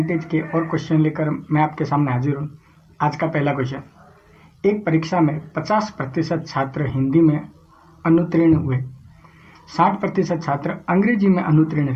के और क्वेश्चन लेकर मैं आपके सामने हाजिर हूँ। आज का पहला क्वेश्चन, एक परीक्षा में 50% छात्र हिंदी में अनुत्तीर्ण हुए, 60% छात्र अंग्रेजी में अनुत्तीर्ण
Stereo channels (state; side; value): identical; both; correlation 1.00